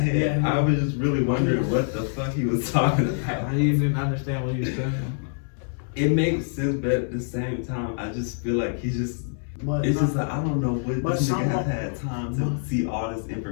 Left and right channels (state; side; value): silent; right; digital silence